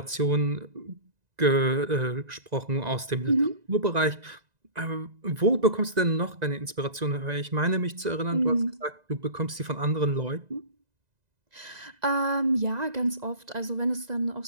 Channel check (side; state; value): left; late; 2.0 ms